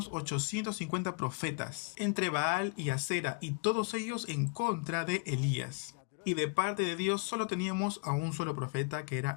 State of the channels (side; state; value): right; quieter; 36.3 dB